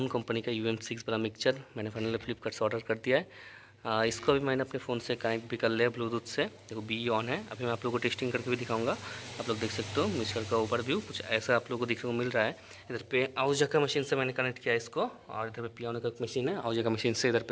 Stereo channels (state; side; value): identical; both; correlation 1.00